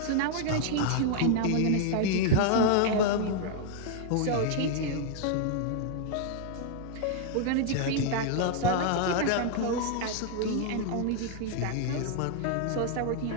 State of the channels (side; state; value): both; different; correlation -0.01